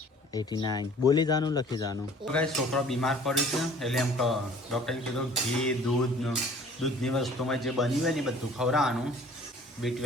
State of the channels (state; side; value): normal; both; correlation 0.51